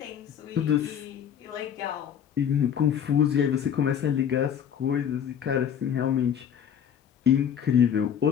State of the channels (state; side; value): quieter; right; 8.7 dB